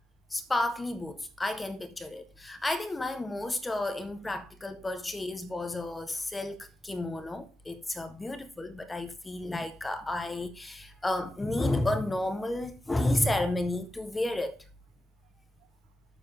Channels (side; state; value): both; normal; correlation 0.91